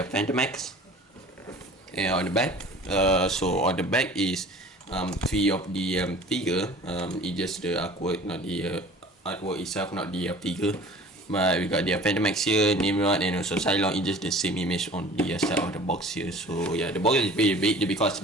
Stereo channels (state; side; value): normal; both; correlation 0.45